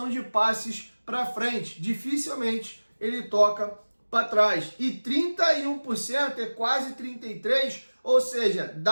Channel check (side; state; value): both; inverted; correlation -1.00